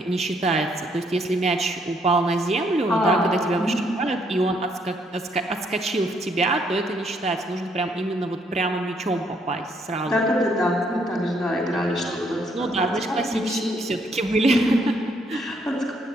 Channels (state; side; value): normal; both; correlation 0.70